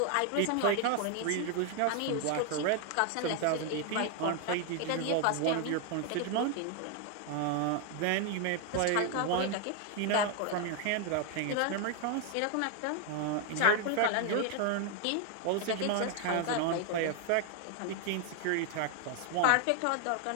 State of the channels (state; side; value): different; both; correlation 0.00